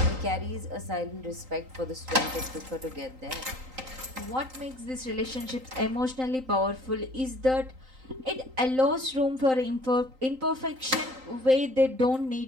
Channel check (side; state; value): left; late; 3.9 ms